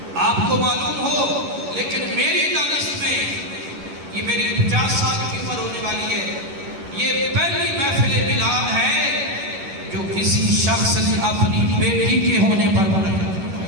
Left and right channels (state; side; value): late; left; 11 ms